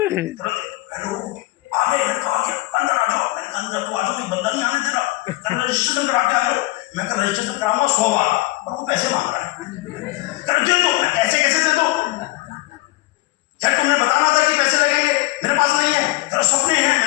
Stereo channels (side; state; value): right; quieter; 19.8 dB